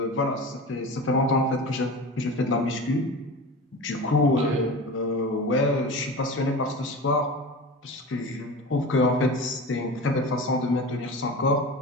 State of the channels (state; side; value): normal; both; correlation 0.32